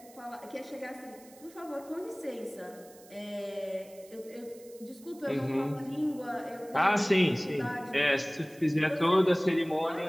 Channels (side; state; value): right; noise; hiss, 23 dB below the sound